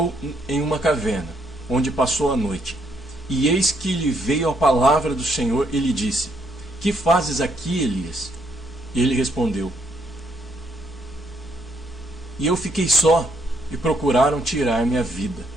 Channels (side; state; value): both; normal; correlation 0.73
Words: em uma caverna, onde passou a noite. E eis que lhe veio a palavra do Senhor e lhe disse: que fazes aqui, Elias? E ele respondeu: e eu fiquei só, e procuraram tirar-me a vida.